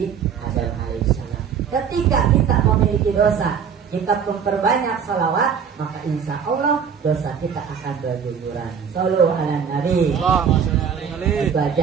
Adam alaihissalam. Ketika kita memiliki dosa, kita memperbanyak salawat, maka insya Allah dosa kita akan berguguran. Sallu ala Nabi. Itu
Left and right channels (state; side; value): quieter; left; 7.2 dB